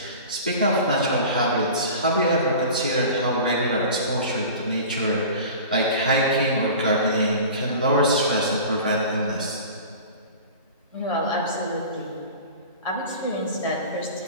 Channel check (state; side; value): inverted; both; correlation -0.37